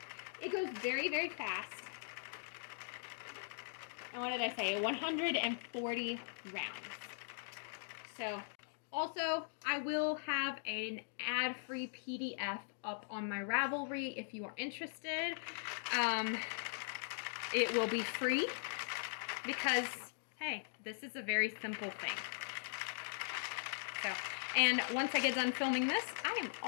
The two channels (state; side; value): silent; right; digital silence